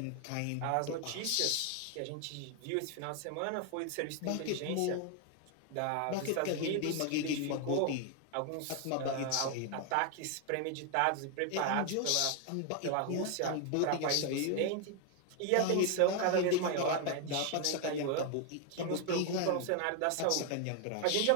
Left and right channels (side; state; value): both; different; correlation 0.01